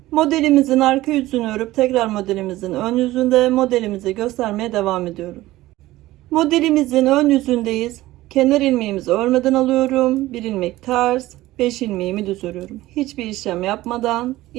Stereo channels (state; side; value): quieter; left; 17.0 dB